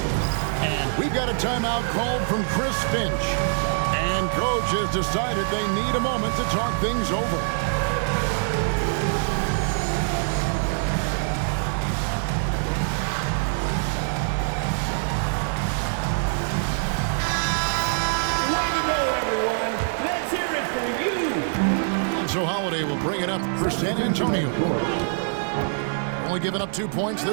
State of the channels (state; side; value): silent; left; 62 dB below the other